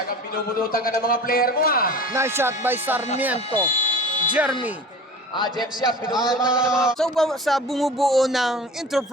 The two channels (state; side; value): normal; both; correlation 0.38